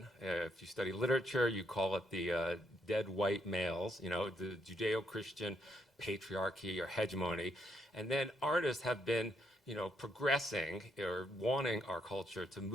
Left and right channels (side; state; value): both; normal; correlation 0.75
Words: If you study literature, you call it the dead white males, you know, the Judeo-Christian patriarchy or hegemony. And then artists have been, you know, progressing or wanting our culture to